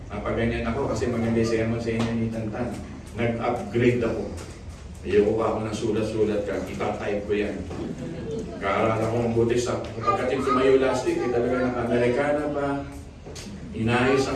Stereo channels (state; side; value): identical; both; correlation 1.00